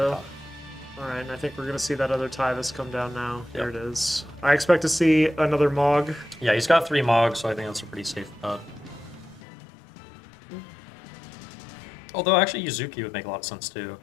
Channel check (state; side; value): drops out; right; at 9.4 s